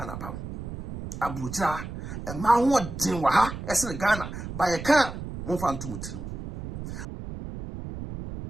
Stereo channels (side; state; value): right; noise; rumble, 8 dB below the sound